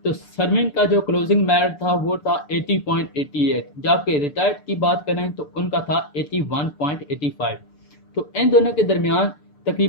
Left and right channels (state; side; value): late; right; 6.8 ms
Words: तो सर्विंग का जो क्लोजिंग मेरिट था वो था 80.88, जबकि रिटायर्ड की बात करें तो उनका था 81.85। तो इन दोनों के दरमियान